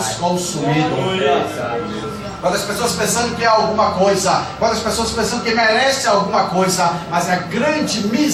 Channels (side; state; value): both; identical; correlation 1.00